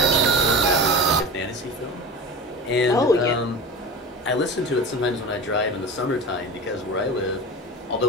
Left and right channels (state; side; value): normal; both; correlation 0.30